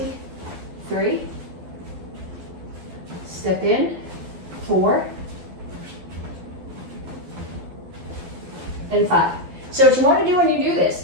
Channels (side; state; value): left; late; 12 ms